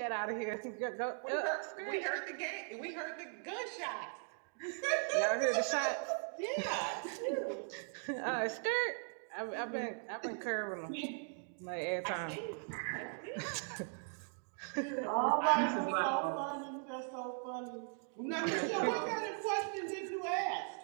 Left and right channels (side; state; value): left; silent; 52 dB below the other